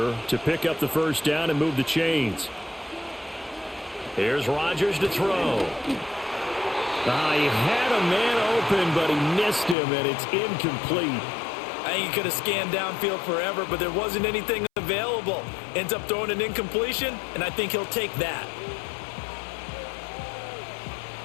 to pick up the first down and move the chains. Here's Rodgers to throw. He had a man open, but he missed him, and it's incomplete. I think he could have scanned downfield forever, but there wasn't anything available. Ends up throwing an incompletion, and I think he'll take that.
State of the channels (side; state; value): right; drops out; at 9.8 s